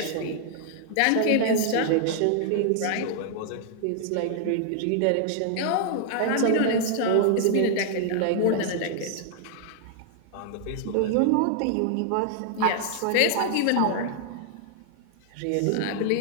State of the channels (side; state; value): both; different; correlation 0.00